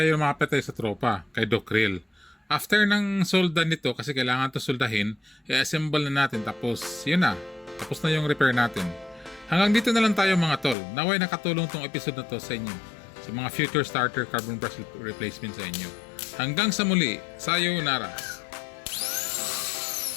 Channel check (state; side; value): drops out; right; at 10.8 s